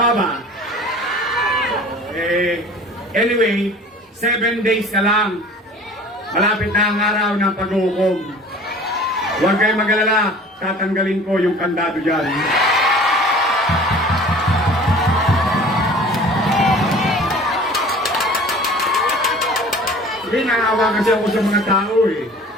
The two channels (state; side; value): normal; both; correlation 0.45